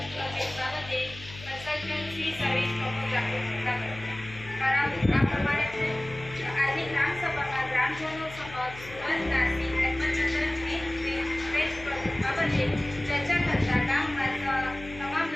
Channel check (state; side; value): noise; left; hum, 16 dB below the sound